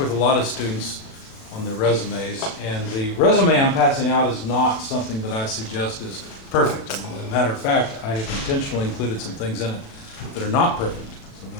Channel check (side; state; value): right; late; 37 ms